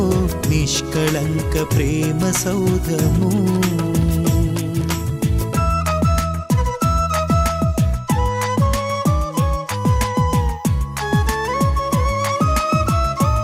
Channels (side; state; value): both; identical; correlation 1.00